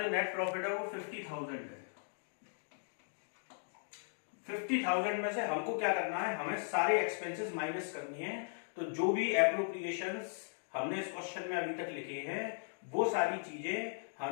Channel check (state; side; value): silent; right; digital silence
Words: जो नेट प्रॉफिट है वो 50,000 है. 50,000 में से हमको क्या करना है? हमें सारे एक्सपेंसेस माइनस करनी है. तो जो भी एप्रोप्रिएशंस हमने इस क्वेश्चन में अभी तक लिखे हैं वो सारी चीजें